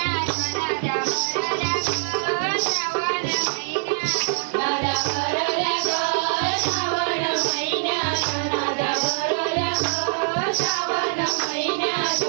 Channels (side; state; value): left; silent; 62 dB below the other